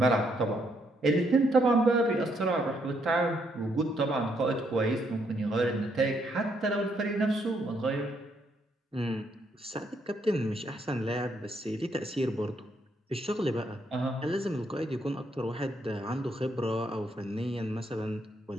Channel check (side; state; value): both; normal; correlation 0.74